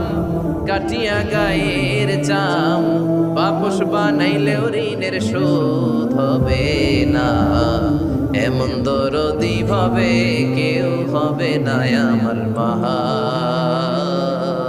কাটিয়া গায়ের চাম, বাপস বানাইলেও ঋণের শোধ হবে না। এমন দরদি ভাবে কেউ হবে না আমার মা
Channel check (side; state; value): both; identical; correlation 1.00